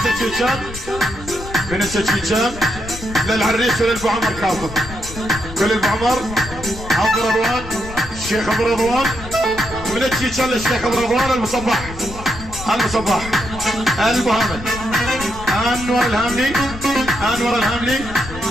من السجيجان للعريس وللبو عمر كاظم كل البو عمر عبد رضوان الشيخ ابو رضوان من السجيجان للشيخ ابو رضوان المصباح المصباح البو حامد انور الهاملي انور الهاملي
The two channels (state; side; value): noise; left; rumble, 12 dB below the sound